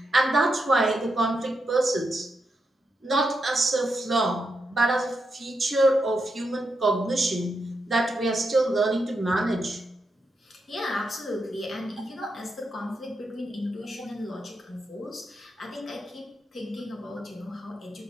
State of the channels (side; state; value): both; normal; correlation 0.85